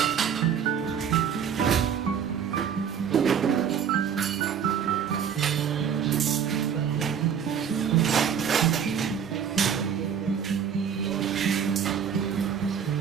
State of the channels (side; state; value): left; quieter; 7.9 dB